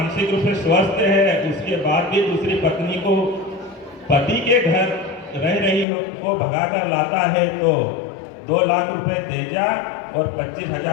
रूप से स्वस्थ है उसके बाद भी दूसरी पत्नी को पति के घर रह रही को भगाकर लाता है तो 2 लाख रुपए देजा और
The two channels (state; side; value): drops out; right; at 5.9 s